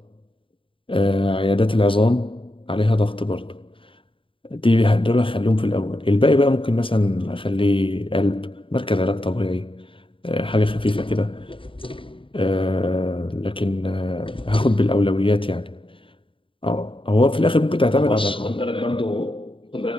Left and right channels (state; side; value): late; right; 0.25 ms